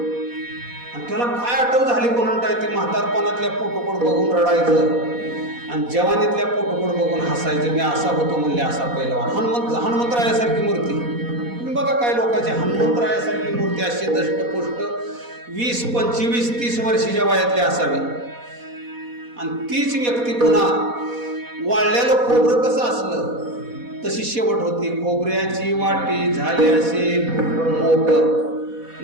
आणि त्याला काय आठव झाली कोणाला, ती म्हातारपणातल्या फोटोकडे बघून रडायचं आणि जवानीतल्या फोटोकडे बघून हसायचं. मी असा होतो म्हणले, असा पैलवान. हनुमंतरायासारखी मूर्ती. तुम्ही बघा काय लोकांची हनुमंतरायासारखी मूर्ती अशी दष्टपुष्ट 20, 25, 30 वर्षाच्या वयातली असावी. आणि तीच व्यक्ती पुन्हा वाळलेलं खोबरं कसं असलं तशी शेवट होती. खोबऱ्याची वाटी झाली असे मोठ,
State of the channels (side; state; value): left; late; 4.1 ms